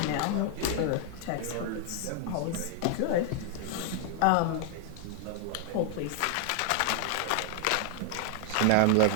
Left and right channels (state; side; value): different; both; correlation -0.01